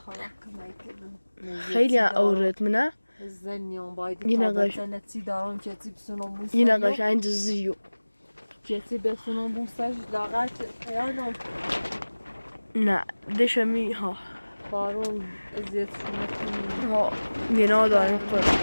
خیلی اورد منه زنیان باید یه تا نقاش بزنتی دارم چتی بسونم بوستن یه نقاش این زیو چتی بسونم بوستش لاغر خیانم نه دشمی ها بارون ازیتشونه کنیم ها گناه داریم خود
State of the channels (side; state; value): both; inverted; correlation -1.00